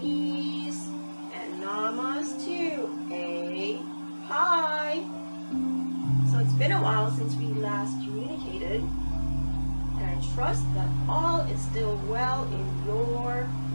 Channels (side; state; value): both; inverted; correlation -1.00